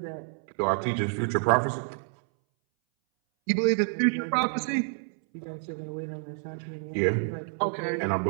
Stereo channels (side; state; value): left; silent; 59 dB below the other